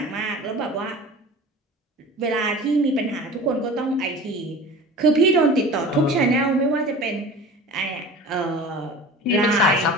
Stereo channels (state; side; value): normal; both; correlation 0.38